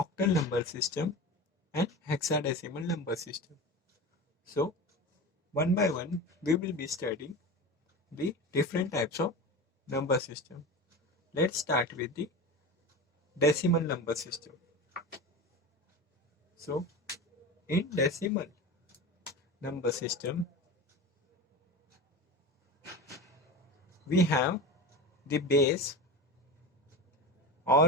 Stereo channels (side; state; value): both; normal; correlation 0.28